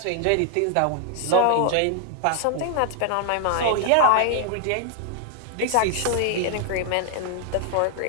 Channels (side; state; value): both; different; correlation 0.00